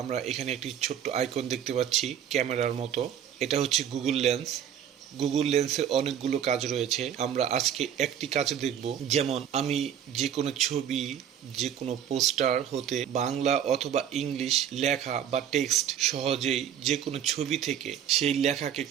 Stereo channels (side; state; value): left; quieter; 9.3 dB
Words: আমরা এখানে একটি ছোট্ট আইকন দেখতে পাচ্ছি ক্যামেরার মতো। এটা হচ্ছে গুগল লেন্স। গুগল লেন্সের অনেকগুলো কাজ রয়েছে। আমরা আজকে একটি কাজ দেখব। যেমন আমি যে কোনো ছবি, যে কোনো পোস্টার হতে বাংলা অথবা ইংলিশ লেখা বা টেক্সট সহজেই যে কোনো ছবি থেকে সেই লেখাকে